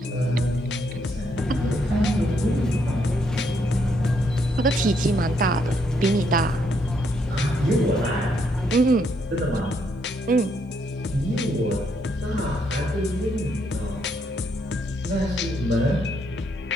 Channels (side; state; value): both; normal; correlation 0.74